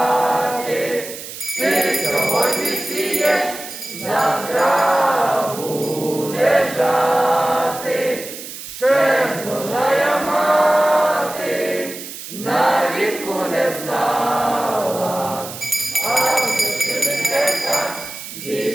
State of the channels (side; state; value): right; noise; hiss, 11 dB below the sound